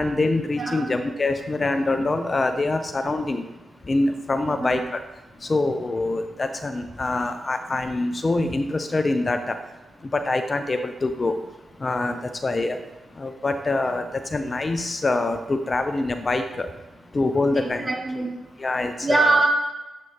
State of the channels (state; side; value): normal; both; correlation 0.91